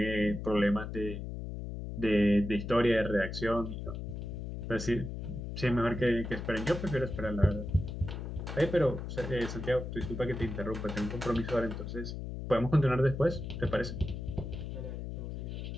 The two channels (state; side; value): noise; left; hum, 6 dB below the sound